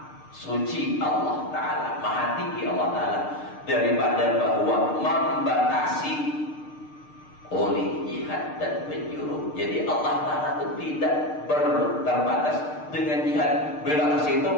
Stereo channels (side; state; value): right; late; 6.6 ms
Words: suci Allah Ta'ala, maha tinggi Allah Ta'ala daripada bahwa membatasi oleh jihad dan penjuru. Jadi Allah Ta'ala itu tidak terbatas dengan jihad. Bila ke situ